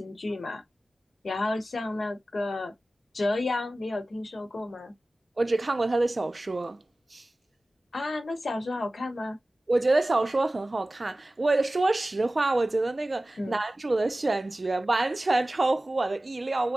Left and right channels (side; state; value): both; normal; correlation 0.97